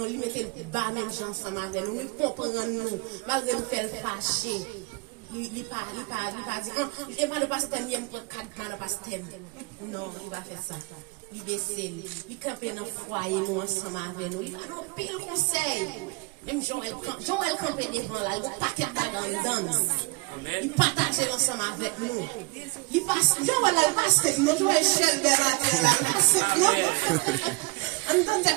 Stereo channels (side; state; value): left; quieter; 28.2 dB